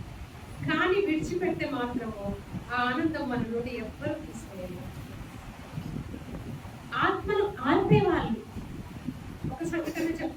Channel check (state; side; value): identical; both; correlation 1.00